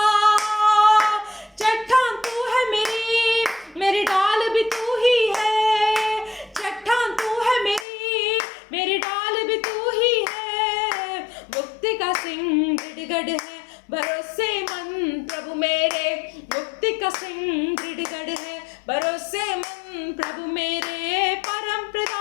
चट्टान तू है मेरी डाल भी तू ही है। चट्टान तू है मेरी डाल भी तू ही है। मुक्ति का सिंह दृढ़गढ़ है, भरोसेमंद प्रभु मेरे। मुक्ति का सिंह दृढ़गढ़ है, भरोसेमंद प्रभु मेरे। परम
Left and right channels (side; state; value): right; drops out; at 7.9 s